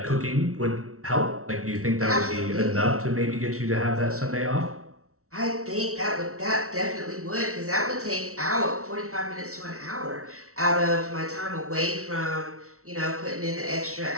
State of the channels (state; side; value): late; left; 0.64 ms